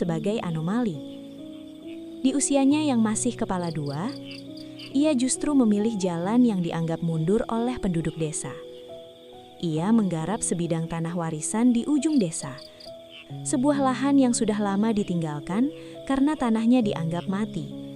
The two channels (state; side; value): identical; both; correlation 1.00